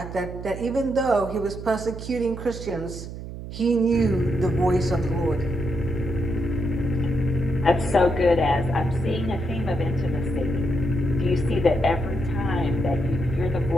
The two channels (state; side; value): noise; right; hum, 10 dB below the sound